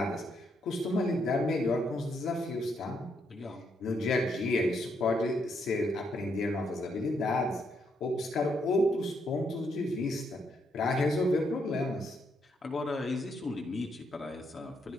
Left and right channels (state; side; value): normal; both; correlation 0.76